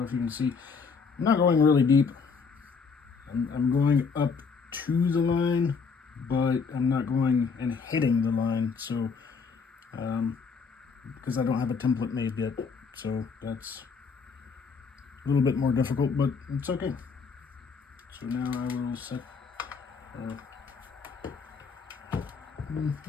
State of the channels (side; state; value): right; quieter; 5.3 dB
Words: if you can see, I'm not going really deep. I'm going up to the line, but I'm not going and hitting the line. So, because I don't have a template made yet, so that's a little bit more difficult, but it's okay. So now I will set.